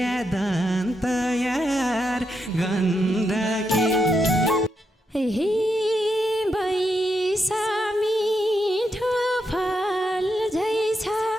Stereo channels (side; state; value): both; normal; correlation 0.83